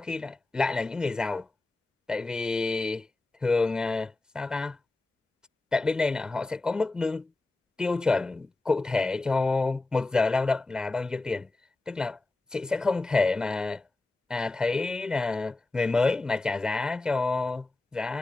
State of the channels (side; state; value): right; quieter; 3.2 dB